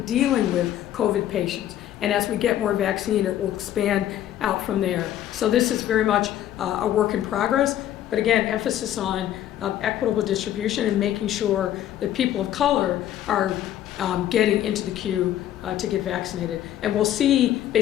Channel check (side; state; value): right; quieter; 11.9 dB